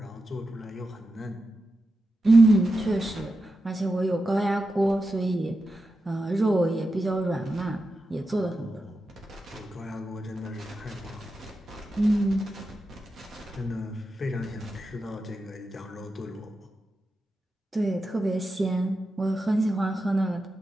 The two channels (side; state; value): both; normal; correlation 0.89